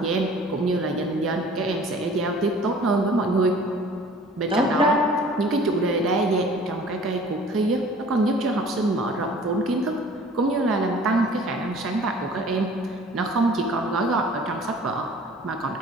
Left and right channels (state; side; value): normal; both; correlation 0.49